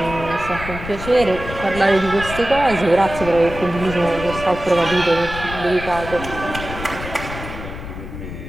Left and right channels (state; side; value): noise; left; rumble, 10 dB below the sound